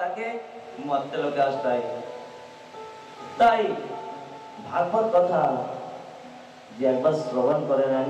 তাকে মর্তে লোকে আসতে হয়। তাই ভাগবত কথা যে একবার শ্রবণ করে নেয়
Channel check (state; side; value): identical; both; correlation 1.00